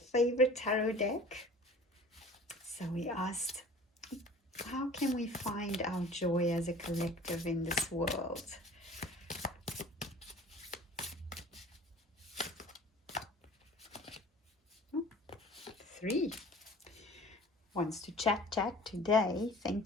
favorite tarot deck. So we asked, how can we find our joy as a collective in this world? Oh, 3 wants to chat today.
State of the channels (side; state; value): both; normal; correlation 0.45